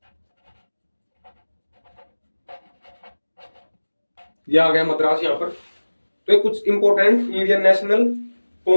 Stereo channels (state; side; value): inverted; both; correlation -1.00